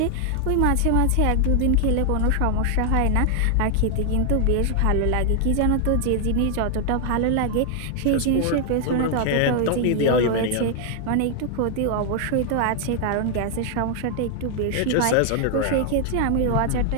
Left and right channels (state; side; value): different; both; correlation 0.00